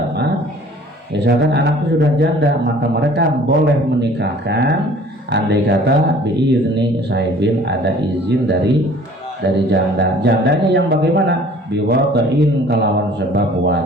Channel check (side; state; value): both; normal; correlation 0.51